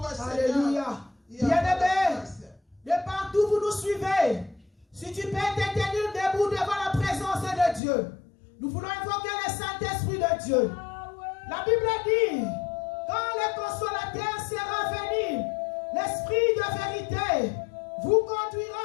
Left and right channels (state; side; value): drops out; right; at 7.8 s